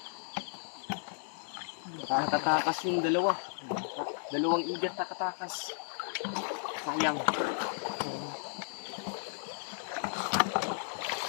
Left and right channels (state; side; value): silent; right; 55 dB below the other